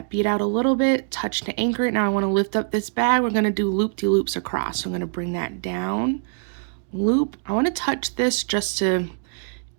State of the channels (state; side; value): silent; left; digital silence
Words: bead out a little bit, touch to anchor it. Now I wanna lift up this bag. We're gonna do loop-de-loops across. So I'm gonna bring that down, loop. I wanna touch this just to